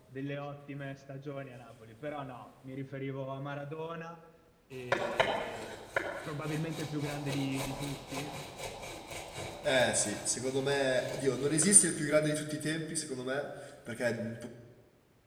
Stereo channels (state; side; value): identical; both; correlation 1.00